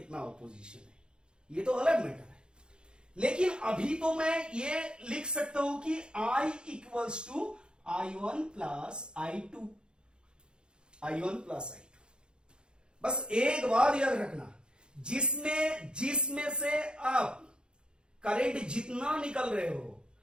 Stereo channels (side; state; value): left; late; 0.050 ms